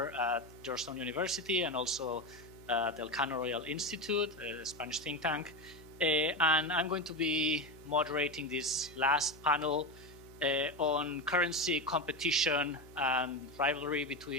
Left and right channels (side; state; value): left; noise; hum, 21 dB below the sound